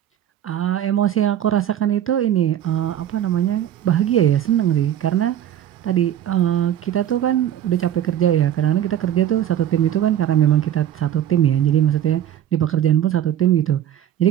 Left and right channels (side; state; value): left; quieter; 10.9 dB